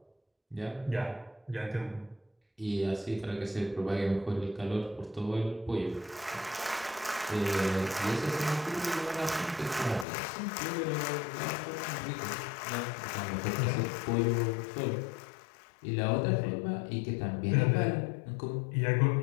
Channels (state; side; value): drops out; right; at 10.1 s